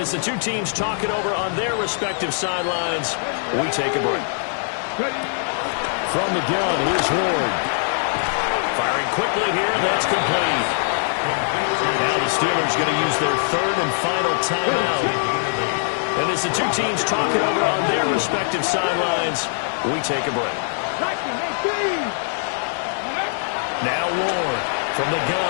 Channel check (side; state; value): right; silent; digital silence